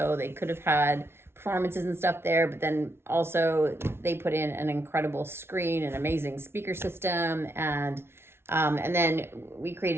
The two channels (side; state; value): left; late; 0.12 ms